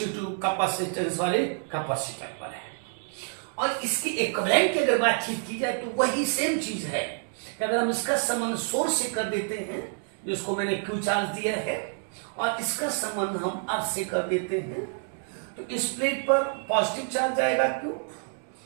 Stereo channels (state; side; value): silent; left; 59 dB below the other